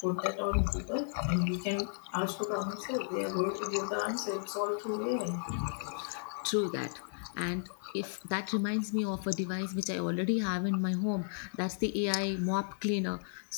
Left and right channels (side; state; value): right; silent; digital silence